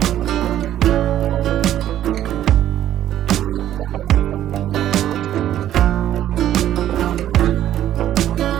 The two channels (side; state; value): left; quieter; 12.0 dB